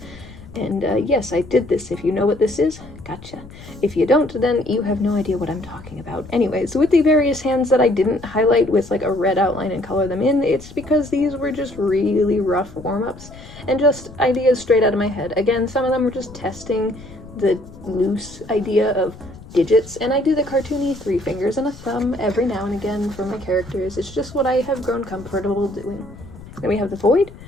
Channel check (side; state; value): left; noise; rumble, 17 dB below the sound